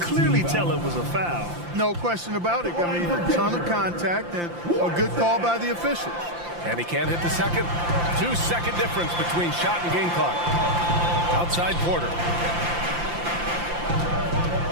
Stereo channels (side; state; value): left; late; 5.8 ms